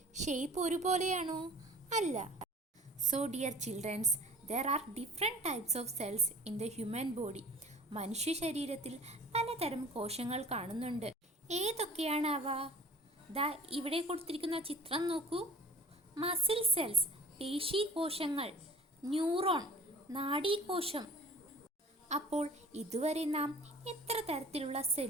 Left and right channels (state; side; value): normal; both; correlation 0.45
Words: ഷേപ്പ് ഒരുപോലെയാണോ? അല്ല. So dear children's, there are different types of cells in the human body. മനുഷ്യ ശരീരത്തിൽ പലതരം കോശങ്ങൾ കാണുന്നുണ്ട്. ഏതൊക്കെയാണ് അവ? ദാ ഇവിടെ കൊടുത്തിരിക്കുന്ന ചിത്രം നോക്കൂ. മസിൽ സെൽസ്, പേശി കോശങ്ങൾ, ന്യൂറോൺ, നാഡീകോശം. അപ്പോൾ ഇതുവരെ നാം എത്ര തരത്തിലുള്ള